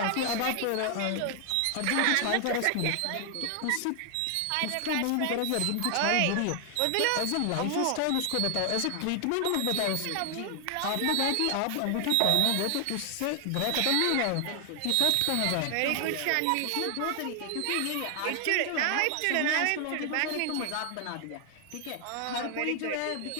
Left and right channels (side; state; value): both; different; correlation 0.00